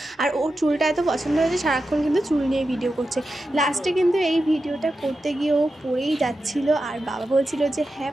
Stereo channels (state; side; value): normal; both; correlation 0.90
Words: আর ওর চুলটা এত পছন্দ হয়েছে, সারাক্ষণ কিন্তু চুল নিয়ে ভিডিও করছে। লাস্টে কিন্তু এই ভিডিওটা করতে গিয়ে ও পড়েই যাচ্ছিল। আর বাবা বলছিল যে হ্যাঁ